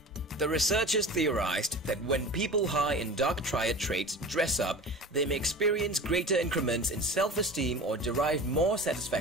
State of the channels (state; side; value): normal; both; correlation 0.35